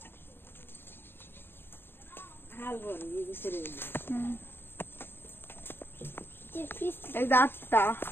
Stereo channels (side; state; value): right; late; 0.11 ms